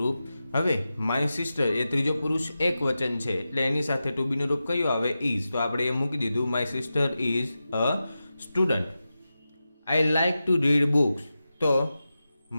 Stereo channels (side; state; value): both; inverted; correlation -0.92